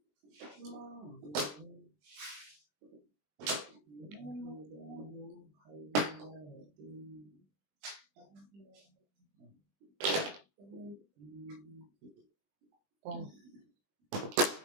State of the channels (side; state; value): left; late; 20 ms